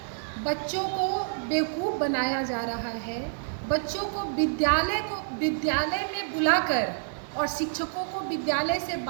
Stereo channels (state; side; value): silent; left; digital silence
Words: बच्चों को बेवकूफ़ बनाया जा रहा है। बच्चों को विद्यालय में बुलाकर और शिक्षकों को विद्यालय से